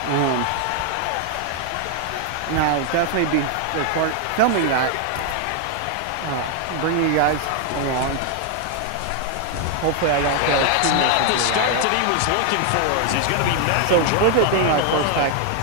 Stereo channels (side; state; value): both; different; correlation 0.00